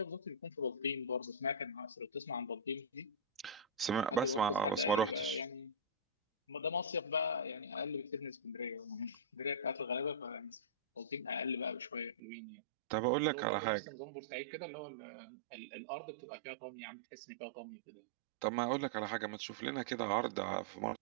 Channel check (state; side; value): drops out; left; at 12.2 s